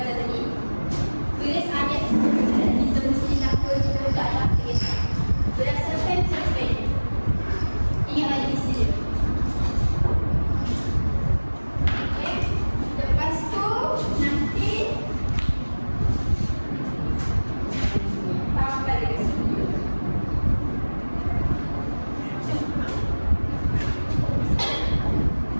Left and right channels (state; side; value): inverted; both; correlation -1.00